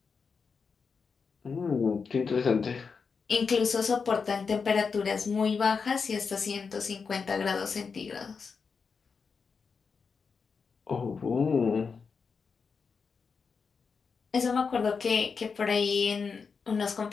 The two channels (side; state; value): right; quieter; 5.4 dB